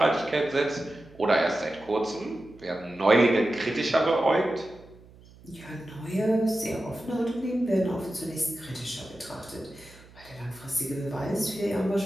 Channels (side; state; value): right; noise; hum, 23 dB below the sound